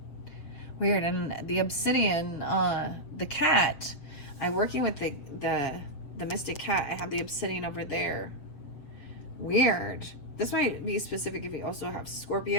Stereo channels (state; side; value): late; right; 7.7 ms